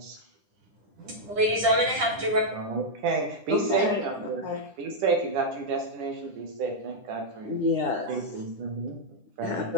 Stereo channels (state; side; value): late; left; 10 ms